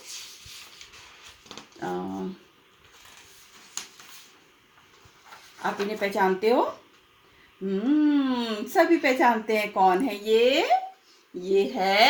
आप इन्हें पहचानते हो? सभी पहचानते हैं। कौन है ये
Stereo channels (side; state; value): both; identical; correlation 1.00